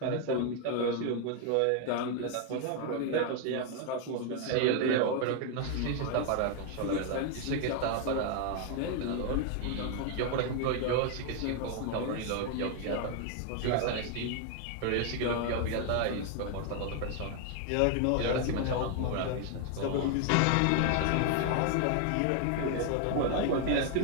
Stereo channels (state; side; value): different; both; correlation 0.00